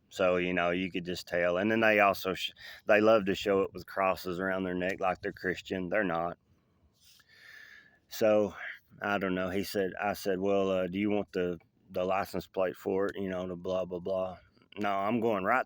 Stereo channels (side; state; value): both; identical; correlation 1.00